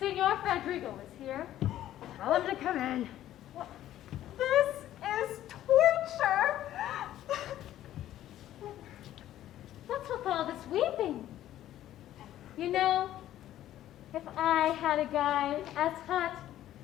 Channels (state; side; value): quieter; right; 12.8 dB